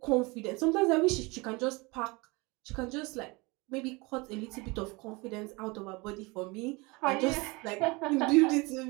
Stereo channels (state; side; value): quieter; left; 25.8 dB